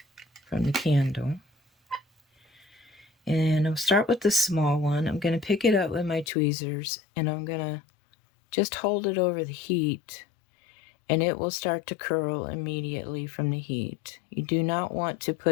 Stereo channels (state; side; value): drops out; right; at 6.2 s